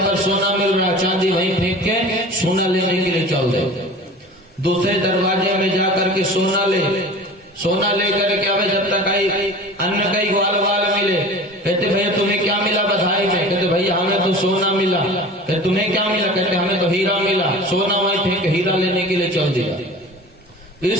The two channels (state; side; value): normal; both; correlation 0.38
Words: पर सोना मिल रहा, चांदी वहीं फेंक के सोना लेने के लिए चल दे। दूसरे दरवाजे में जाकर के सोना लेकर के आवे, जब तक आई अन्न कई ग्वाल बाल मिले। कहते भैया तुम्हें क्या मिला बधाई में? कहते भैया हमें तो सोना मिला। कहते तुम्हें क्या मिला? कहते हमें तो हीरा मिला। सोना वहीं फेंक हीरा लेने के लिए चल दिया।